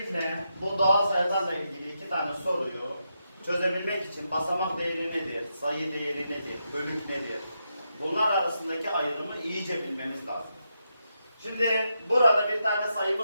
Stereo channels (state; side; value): inverted; both; correlation -0.84